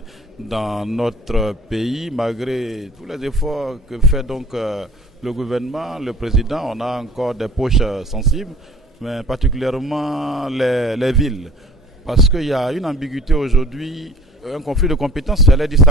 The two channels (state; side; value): normal; both; correlation 0.49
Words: dans notre pays. Malgré tous les efforts que fait donc le gouvernement, le président, on a encore des poches sensibles, mais particulièrement les villes. Parce qu'il y a une ambiguïté aujourd'hui, un conflit de compétences, j'allais dire